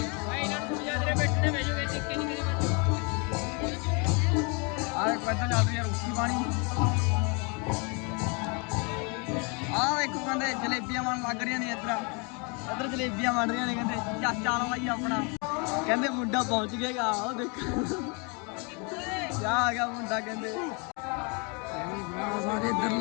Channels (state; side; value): quieter; right; 33.2 dB